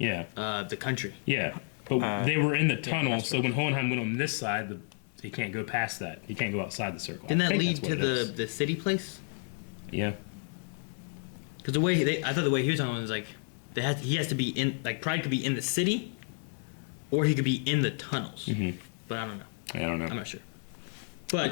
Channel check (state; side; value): silent; right; 56 dB below the other